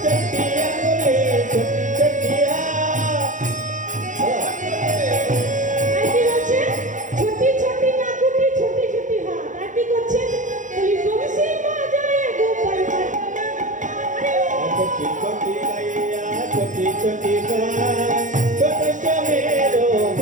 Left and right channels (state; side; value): late; left; 0.37 ms